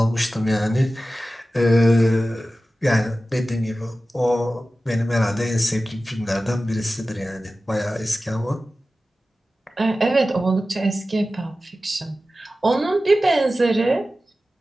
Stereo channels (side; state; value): both; normal; correlation 0.95